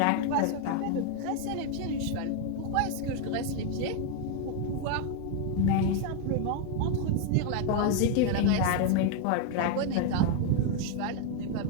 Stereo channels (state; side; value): different; both; correlation 0.00